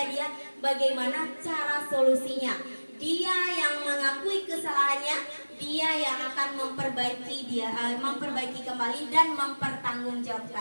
dia bagaimana cara solusinya. Dia yang mengakui kesalahannya, dia yang akan memperbaiki kembali dan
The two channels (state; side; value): inverted; both; correlation -1.00